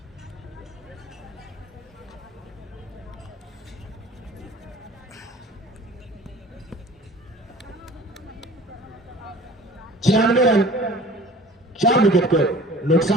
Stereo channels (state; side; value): normal; both; correlation 0.46